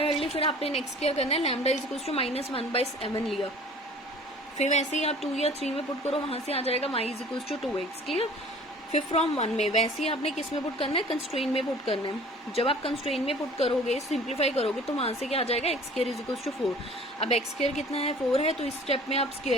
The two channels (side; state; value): both; normal; correlation 0.47